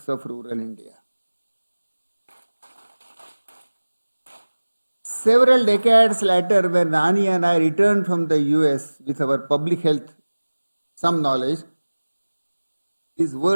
of rural India. Several decades later, when Rani and I returned from the US with our public health, some knowledge, these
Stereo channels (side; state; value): both; inverted; correlation -1.00